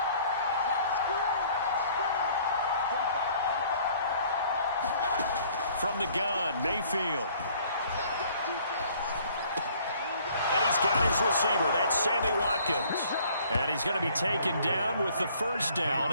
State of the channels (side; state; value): both; inverted; correlation -0.58